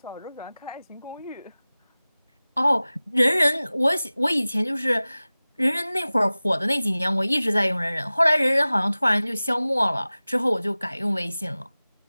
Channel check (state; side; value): inverted; both; correlation -0.98